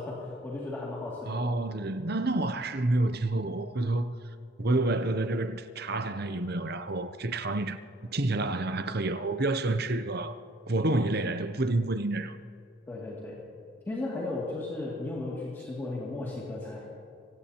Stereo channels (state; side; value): normal; both; correlation 0.61